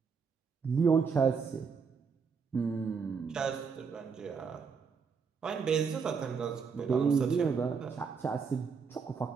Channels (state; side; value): quieter; left; 5.7 dB